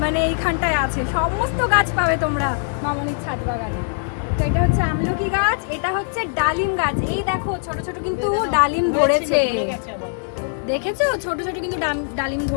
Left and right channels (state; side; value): silent; right; digital silence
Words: মানে এইখানটায় আছে, সমস্ত গাছ পাবে তোমরা মামনির ছাদ বাগানে। তো এটা হচ্ছে আমলকি গাছ, এটা হচ্ছে ডালিম গাছ, এই দেখো ছোট ছোট কিন্তু ডালিম ধরেছে, হয়ে গেছে আবার। দেখেছো ছোট ছোট কিন্তু ডালিম